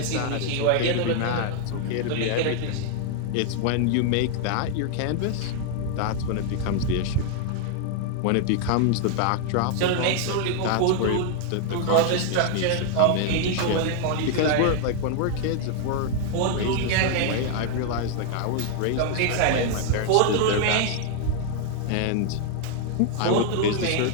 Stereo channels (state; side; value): different; both; correlation 0.00